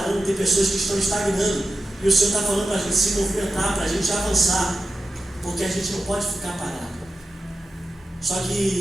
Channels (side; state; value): both; normal; correlation 0.90